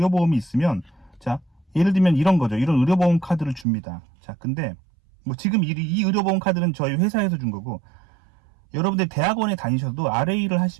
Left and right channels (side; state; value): left; drops out; at 3.7 s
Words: 있으면, 자, 예를 들면 이런 거죠. 이런 의료보험 카드를 줍니다. 자, 근데 뭐 지금 이 의료보험 카드는 저희 회사에서 준 거고, 여러분들 대학원에 다니셔도 RA를